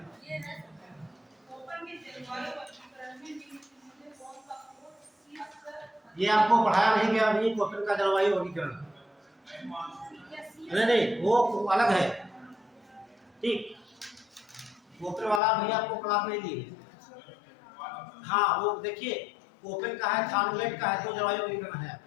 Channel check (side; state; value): right; drops out; at 15.4 s